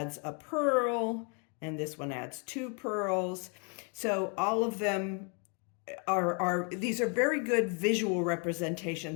a purl, and this one adds 2 purls. So all of them these are very good visual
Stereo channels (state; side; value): quieter; right; 37.5 dB